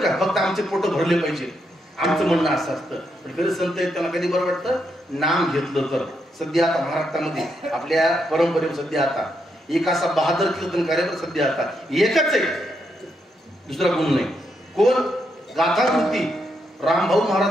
फक्त आमचे पोट भरले पाहिजे आमचं म्हणणं असं असतं. पण खरं संत आहेत त्यांना कधी बरं वाटतं नाम घेतलं तर. सध्या आता महाराष्ट्रामध्ये आपल्या परंपरेवर सध्या आता एक असा बहादर कीर्तनकार सध्या आता एकच आहे दुसरा कोण नाही. कोण गाथामूर्ती रामभाऊ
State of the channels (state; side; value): normal; both; correlation 0.80